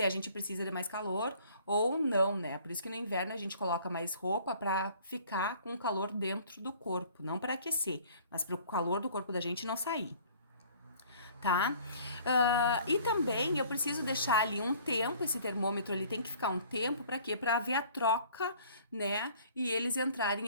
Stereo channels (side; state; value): both; inverted; correlation -0.53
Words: a gente precisa de mais calor ou não, né? Por isso que no inverno a gente coloca mais roupa para ficar com o calor dentro do corpo, não para aquecer, mas para o calor do corpo da gente não sair. Tá? E também eu preciso deixar ali um tempo, esse termômetro ali tem que ficar um tempo para quê? Para haver a troca, né? E eles entrarem